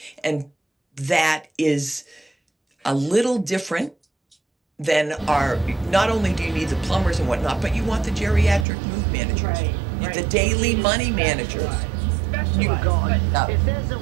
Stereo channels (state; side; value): drops out; left; at 8.7 s